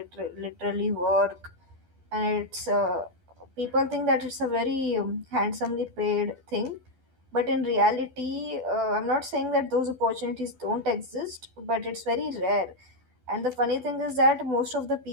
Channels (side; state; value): left; late; 12 ms